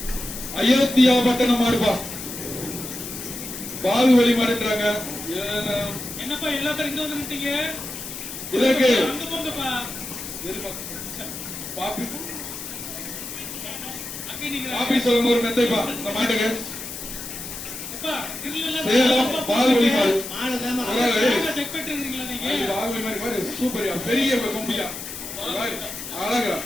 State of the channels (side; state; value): left; noise; hiss, 9 dB below the sound